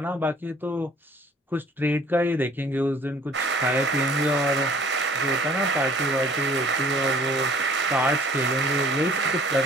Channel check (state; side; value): normal; both; correlation 0.54